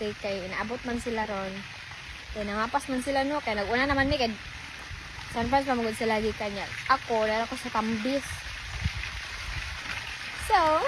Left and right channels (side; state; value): both; identical; correlation 1.00